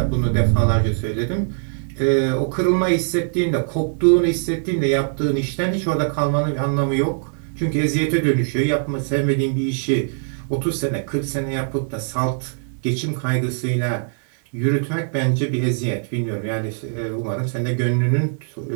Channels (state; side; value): silent; left; 61 dB below the other